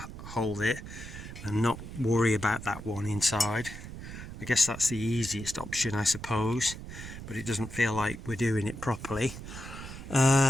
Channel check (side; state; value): right; noise; rumble, 11 dB below the sound